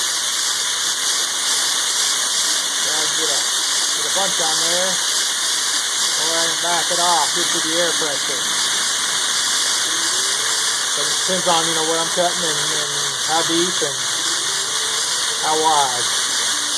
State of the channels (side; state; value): both; identical; correlation 1.00